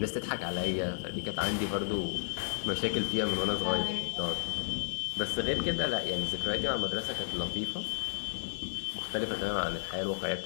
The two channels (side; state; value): right; silent; digital silence